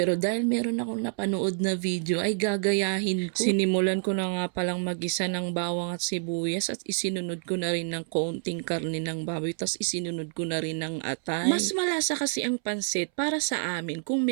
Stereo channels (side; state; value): left; silent; 59 dB below the other